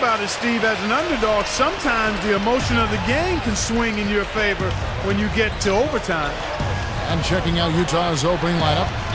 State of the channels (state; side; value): identical; both; correlation 1.00